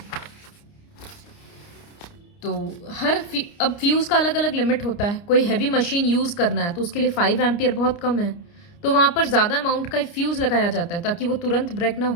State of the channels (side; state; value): right; late; 29 ms